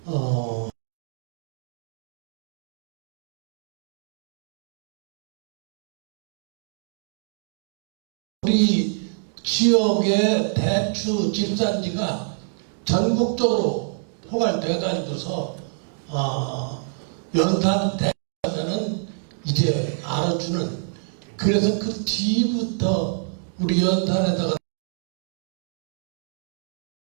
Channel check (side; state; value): left; silent; digital silence